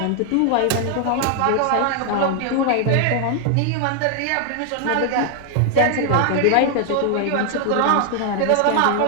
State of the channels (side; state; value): both; different; correlation 0.00